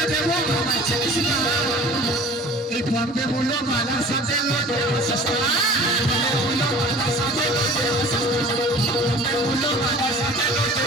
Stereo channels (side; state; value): both; normal; correlation 0.44